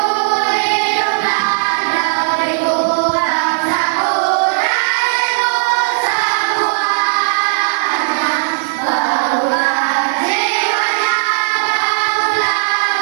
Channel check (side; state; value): left; silent; digital silence